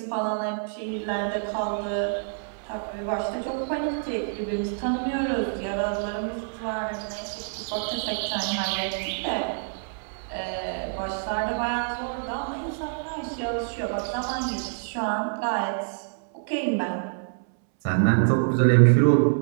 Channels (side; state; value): left; silent; 60 dB below the other